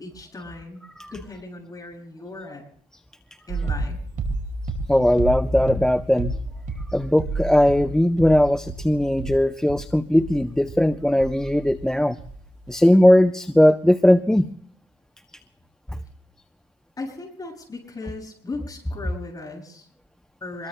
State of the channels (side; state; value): both; normal; correlation 0.97